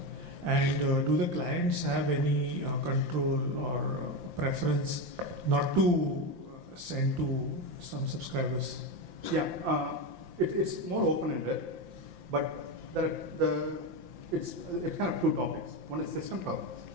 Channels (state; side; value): late; left; 5.8 ms